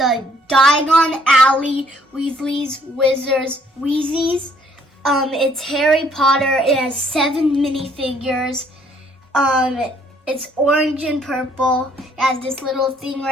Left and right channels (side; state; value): both; normal; correlation 0.64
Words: Diagon Alley, Weasley's, Wizards, Wheezes. It's Harry Potter. It has 7 minifigures. It's orange and purple. It has this little thing